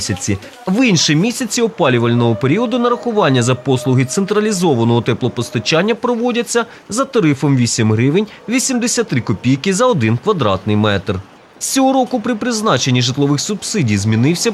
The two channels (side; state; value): both; identical; correlation 1.00